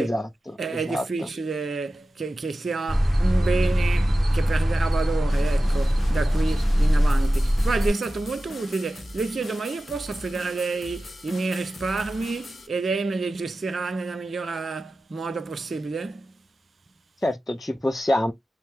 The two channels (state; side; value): normal; both; correlation 0.94